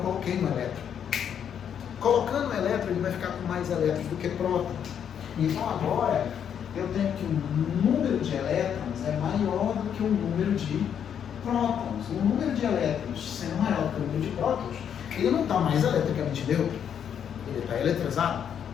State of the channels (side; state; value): right; quieter; 8.5 dB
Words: um elétron. Colocando um elétron, ele vai ficar com mais elétrons do que prótons. Então agora, eu tenho que o número de elétrons é maior do que o número de prótons. O número de elétrons sendo maior do que o número de prótons, ele não está mais eletricamente neutro, ele está eletrizado.